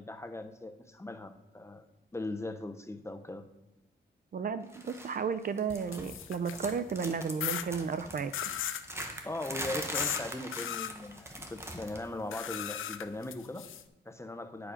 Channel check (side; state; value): both; normal; correlation 0.36